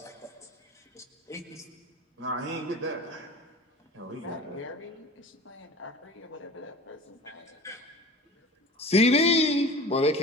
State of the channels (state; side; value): normal; both; correlation 0.38